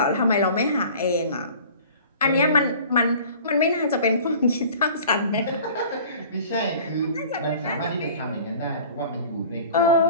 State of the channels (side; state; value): both; inverted; correlation -0.45